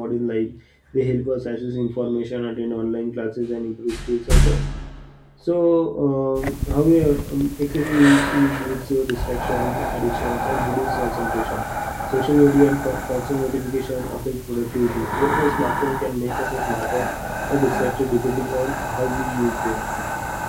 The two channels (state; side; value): identical; both; correlation 1.00